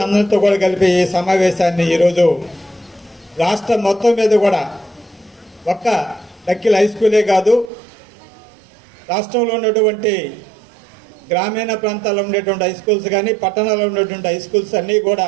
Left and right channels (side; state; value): left; drops out; at 7.7 s